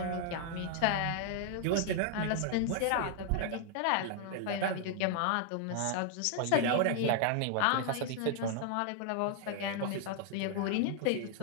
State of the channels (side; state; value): both; different; correlation 0.00